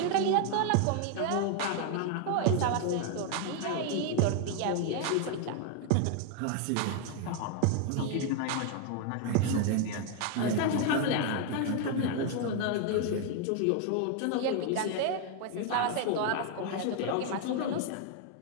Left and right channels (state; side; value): different; both; correlation 0.00